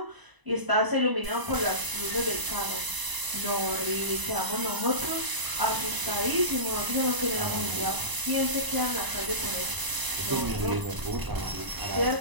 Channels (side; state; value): left; late; 1.0 ms